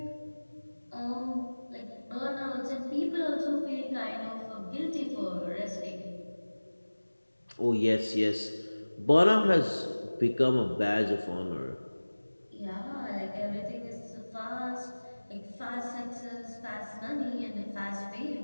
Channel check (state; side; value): inverted; both; correlation -1.00